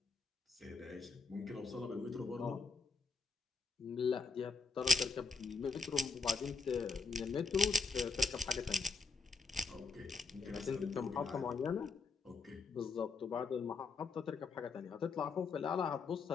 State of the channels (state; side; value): quieter; right; 4.4 dB